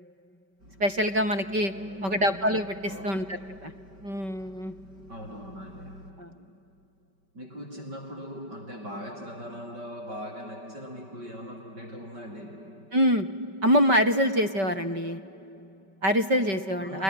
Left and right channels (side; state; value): left; late; 5.2 ms